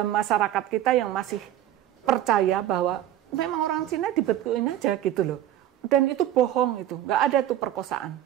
masyarakat kita yang masih percaya bahwa memang orang Cina dibetulin aja gitu loh. Dan itu bohong itu. Nggak ada itu perkosaan.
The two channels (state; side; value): quieter; left; 12.4 dB